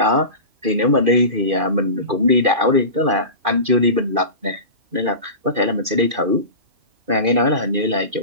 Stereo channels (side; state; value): left; late; 2.5 ms